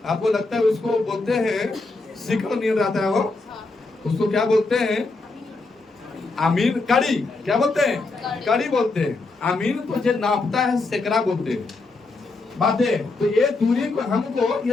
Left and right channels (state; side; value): quieter; right; 3.5 dB